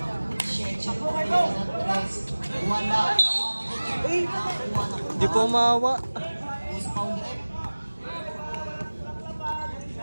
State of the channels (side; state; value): both; inverted; correlation -1.00